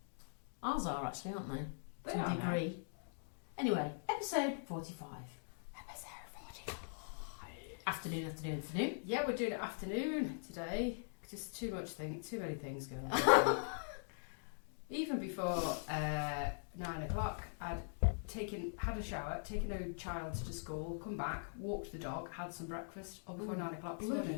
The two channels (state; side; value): silent; right; digital silence